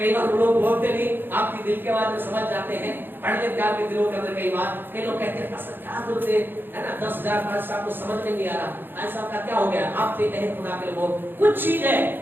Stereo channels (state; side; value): late; left; 0.097 ms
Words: बार लोग बोलते नहीं, आपकी दिल के बात में समझ जाते हैं, पढ़ लेते आपके दिलों के अंदर। कई बार कई लोग कहते हैं पास्टर क्या जरूरत है ना, 10,000 पास्टर साहब को समझ में नहीं आ रहा, ऐसा का क्या हो गया। आपसे कहे खुदा के लोग कुछ चीज है